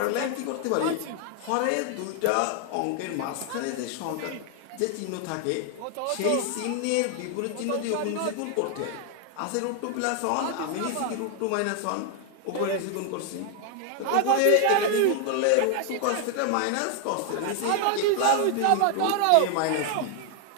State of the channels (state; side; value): different; both; correlation 0.00